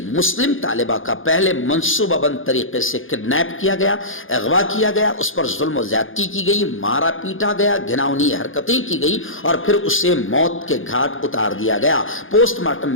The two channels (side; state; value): right; late; 0.58 ms